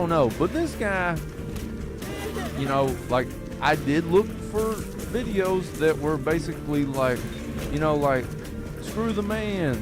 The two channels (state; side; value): identical; both; correlation 1.00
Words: know. But this guy, like, I did look for videos that were basically like, like, screw the man,